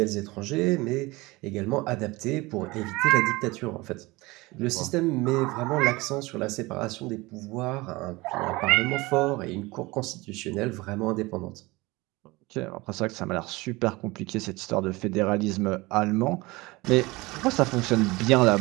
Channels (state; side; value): quieter; left; 22.3 dB